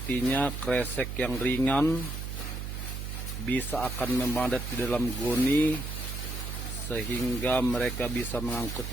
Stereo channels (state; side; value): noise; right; hum, 5 dB below the sound